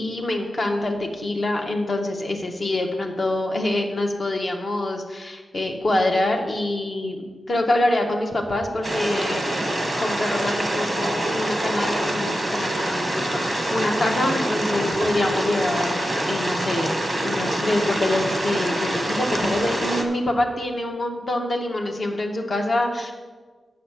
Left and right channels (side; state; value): both; normal; correlation 0.91